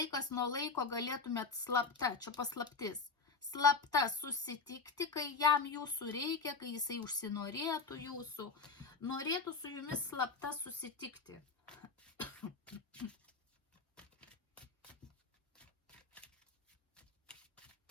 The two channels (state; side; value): quieter; right; 4.6 dB